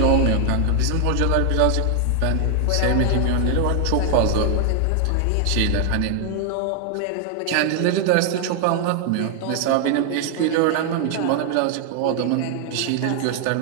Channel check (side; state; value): both; different; correlation 0.00